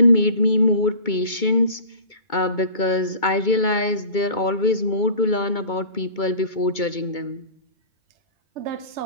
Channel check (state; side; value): late; right; 2.2 ms